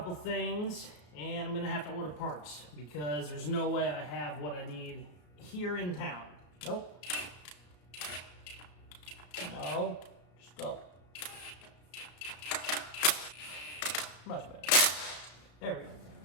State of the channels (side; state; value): right; late; 33 ms